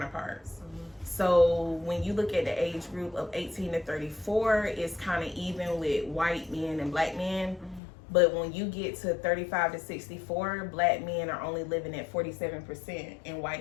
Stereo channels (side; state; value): right; drops out; at 7.8 s